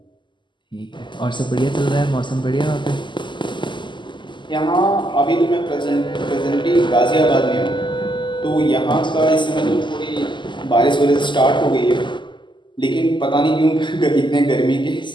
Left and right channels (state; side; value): late; right; 0.23 ms